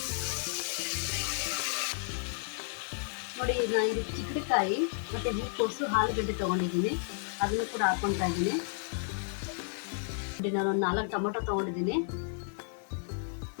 ನೋಡಿ, ನಾನು ಇದಕ್ಕೆ ಚಿಕ್ಕಡಿಕಾಯಿ ಮತ್ತು ಹೂಕೋಸು, ಆಲೂಗಡ್ಡೆ ತೊಗೊಂಡಿದ್ದೀನಿ, ಅದನ್ನು ಕೂಡ ಹಾಕ್ಕೊತಾ ಇದ್ದೀನಿ. ನೋಡಿ, ನಾನು ಒಂದು 4 ಟೊಮೊಟೊ ತೊಗೊಂಡಿದ್ದೀನಿ.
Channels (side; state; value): right; silent; 56 dB below the other